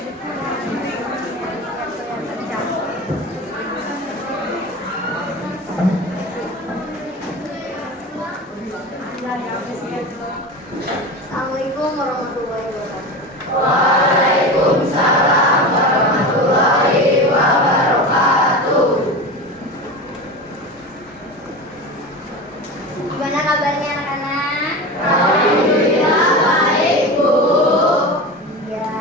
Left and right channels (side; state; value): both; normal; correlation 0.27